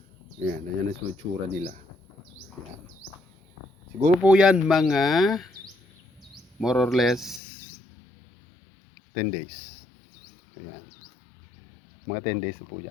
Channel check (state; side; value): drops out; right; at 7.4 s